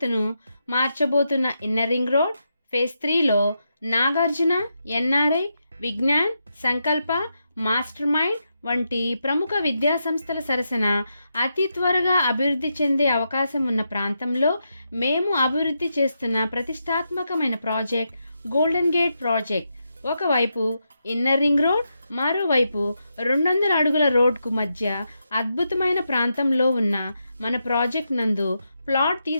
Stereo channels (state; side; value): inverted; both; correlation -0.84